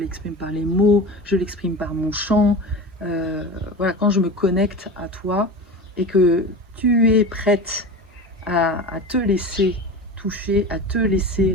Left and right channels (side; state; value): both; normal; correlation 0.30